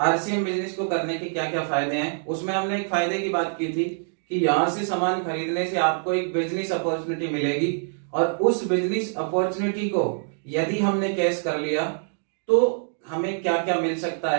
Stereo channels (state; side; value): silent; left; digital silence